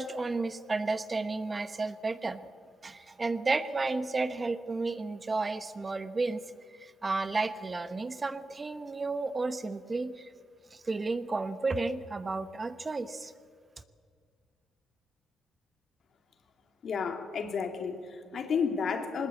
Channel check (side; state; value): both; normal; correlation 0.88